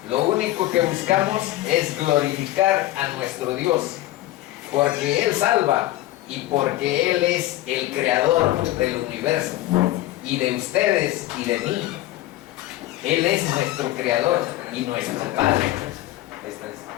Lo único que buscamos es glorificar a nuestro Dios, porque Él salva y porque Él es el creador del universo y de ustedes y de mí. Él es nuestro creador y nuestro Padre.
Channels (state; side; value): quieter; right; 15.8 dB